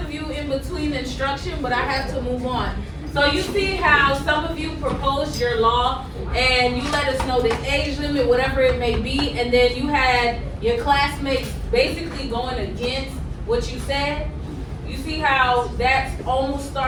of you in between instruction, but I have to move on. So you see how some of you proposed your law and you let us know the age limit, whatever it may be, and then you had your classmates basically going against what you said. You see how that's almost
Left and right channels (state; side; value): identical; both; correlation 1.00